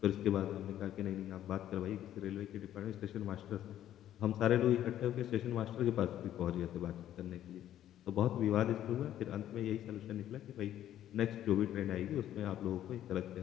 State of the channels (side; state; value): right; quieter; 11.8 dB